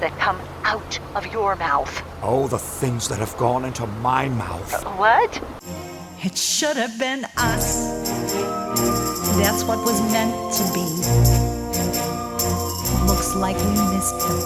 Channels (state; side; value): identical; both; correlation 1.00